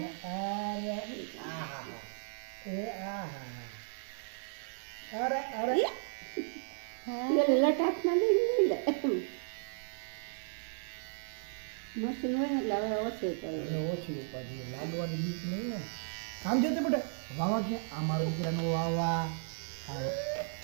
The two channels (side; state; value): left; silent; digital silence